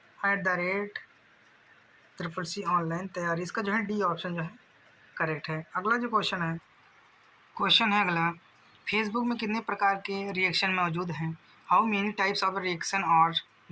@CCC ऑनलाइन तैयारी, इसका जो है डी ऑप्शन जो है करेक्ट है। अगला जो क्वेश्चन है अगला, फेसबुक में कितने प्रकार के रिएक्शन मौजूद हैं? How many types of reaction are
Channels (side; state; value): both; identical; correlation 1.00